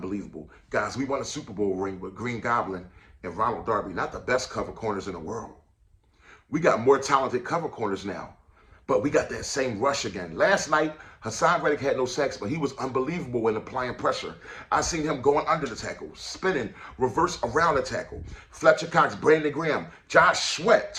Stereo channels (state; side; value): identical; both; correlation 1.00